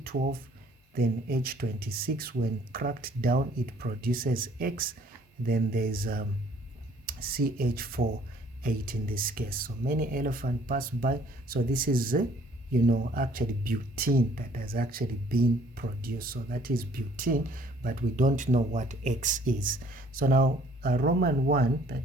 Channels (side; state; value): both; normal; correlation 0.58